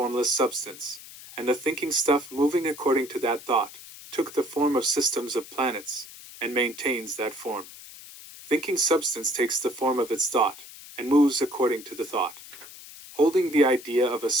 substance, and the thinking stuff moving according to that thought, took the form of systems of planets, and maintains that form. Thinking substance takes the form of its thought, and moves according to the thought. Holding the idea of a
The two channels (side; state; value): left; noise; hiss, 16 dB below the sound